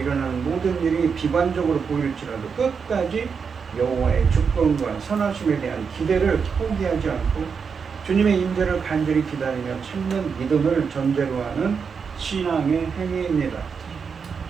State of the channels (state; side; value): quieter; left; 6.0 dB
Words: 모든 일이 비관적으로 보일지라도 끝까지 여호와의 주권과 선하심에 대한 기대를 포기하지 않고 주님의 임재를 간절히 기다리며 찾는 믿음을 전제로 하는 신앙의 행위입니다.